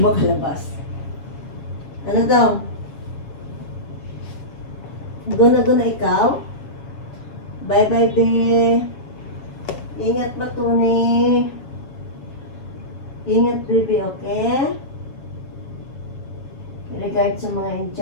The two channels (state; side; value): late; right; 7.4 ms